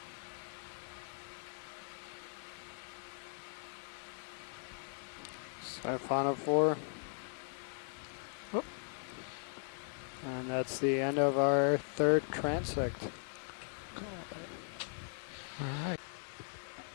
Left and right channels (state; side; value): silent; right; digital silence